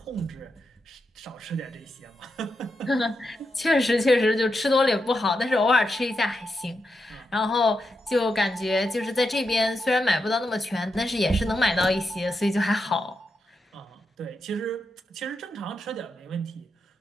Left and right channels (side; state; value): both; normal; correlation 0.86